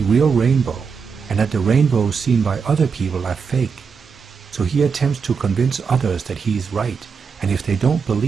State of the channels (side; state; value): left; quieter; 5.8 dB